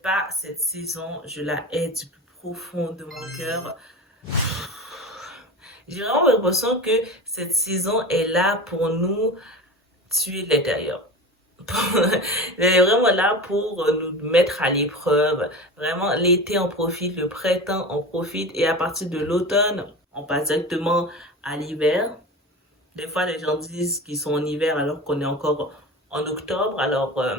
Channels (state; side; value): normal; both; correlation 0.29